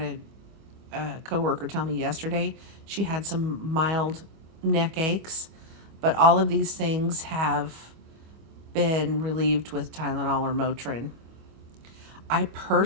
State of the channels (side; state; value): left; late; 25 ms